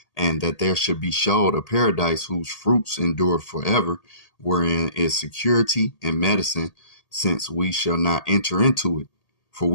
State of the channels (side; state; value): right; late; 1.8 ms